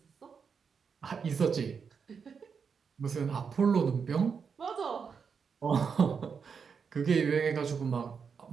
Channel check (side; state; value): left; quieter; 6.1 dB